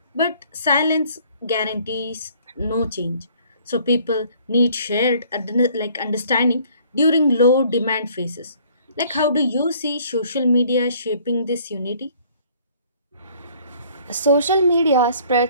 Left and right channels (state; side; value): inverted; both; correlation -0.58